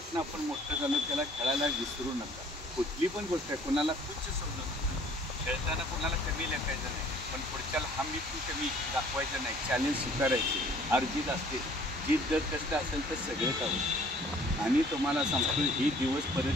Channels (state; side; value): normal; both; correlation 0.55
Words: आपण मोठं झालो त्याला खेळायला विसरू नका. कुठली पण गोष्ट आहे, कोणाला तुच्छ समजू नका. खेळताना कोणाला कमी लेखायचं नाही, पण पुढच्याला हमी पण कमी दाखवायचं नाही. चॅलेंज स्वीकारायचे. अर्जित असते, जीत जर कष्ट असेल तर सगळेच आहोत. आणि तुम्हाला सांगतो, ही दिवस